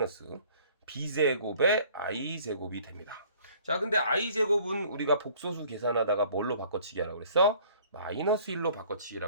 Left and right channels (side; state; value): both; inverted; correlation -0.55